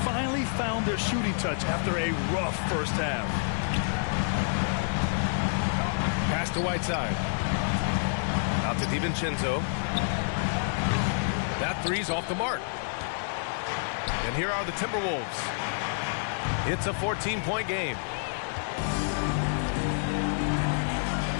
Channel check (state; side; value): silent; right; 59 dB below the other